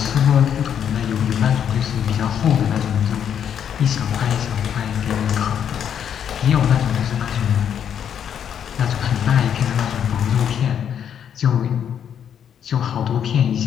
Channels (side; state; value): right; quieter; 8.7 dB